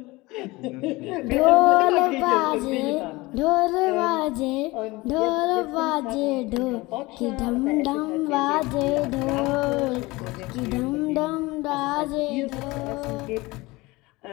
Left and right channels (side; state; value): right; quieter; 21.8 dB